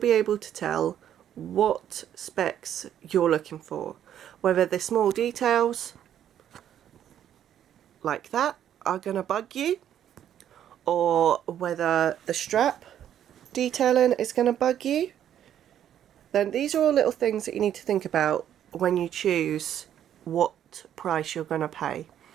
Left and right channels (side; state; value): left; quieter; 10.3 dB